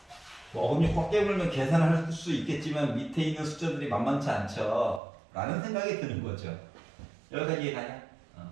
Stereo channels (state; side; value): drops out; left; at 5.0 s